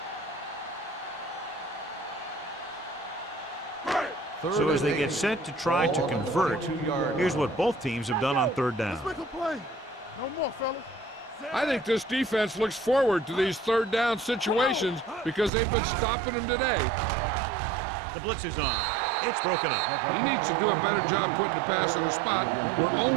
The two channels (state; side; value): drops out; left; at 15.5 s